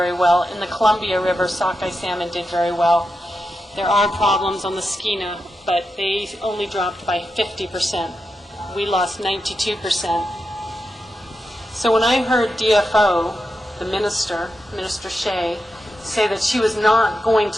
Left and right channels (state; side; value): normal; both; correlation 0.88